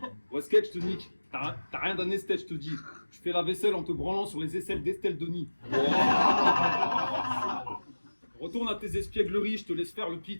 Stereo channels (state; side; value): inverted; both; correlation -1.00